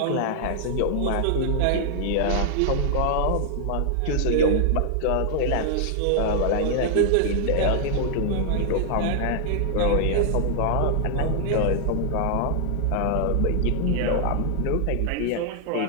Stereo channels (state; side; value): different; both; correlation -0.01